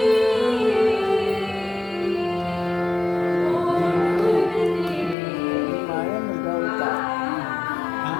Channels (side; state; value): right; drops out; at 5.2 s